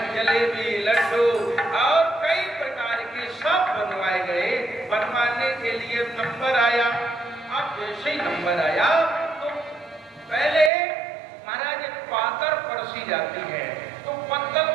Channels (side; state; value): left; drops out; at 10.7 s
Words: जलेबी, लड्डू और कई प्रकार के सब बनवाए गए। बनवाने के लिए नंबर आया। अब जैसे ही नंबर आया तो पहले महाराज पातर परसी जाती है, तो पत्तल